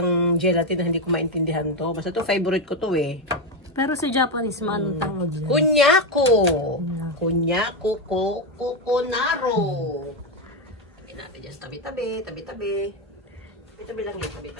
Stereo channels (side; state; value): both; normal; correlation 0.09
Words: gelatin na hindi ko maintindihan to. Basta to, favorite ko to eh. Pero sa Japanese man, anong tawag dyan? Kunyako! Kunyako, kokonaro. Tabi natin dyan sa tabi-tabi, tabi-tabi. Tabi-tabi lang yun,